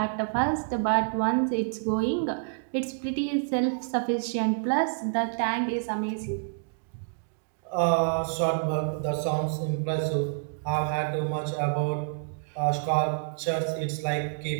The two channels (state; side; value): silent; left; digital silence